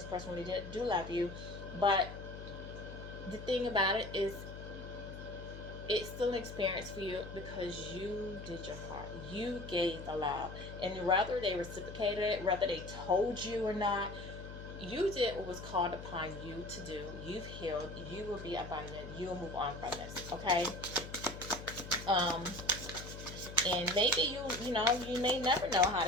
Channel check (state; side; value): noise; left; hum, 11 dB below the sound